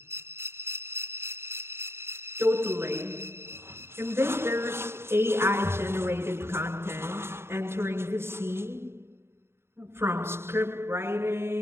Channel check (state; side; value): late; left; 0.12 ms